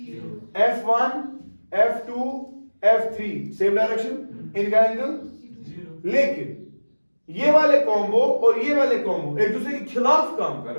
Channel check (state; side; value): inverted; both; correlation -1.00